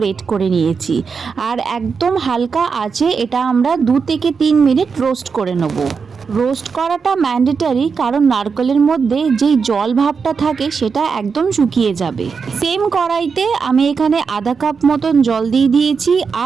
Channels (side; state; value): left; quieter; 5.5 dB